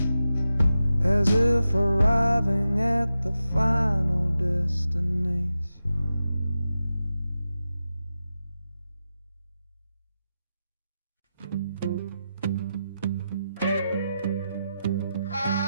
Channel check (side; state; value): both; inverted; correlation -0.90